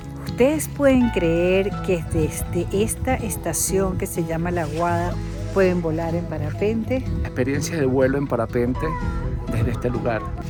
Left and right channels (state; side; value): identical; both; correlation 1.00